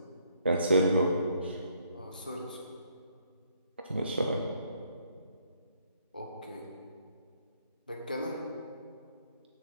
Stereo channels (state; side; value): inverted; both; correlation -0.68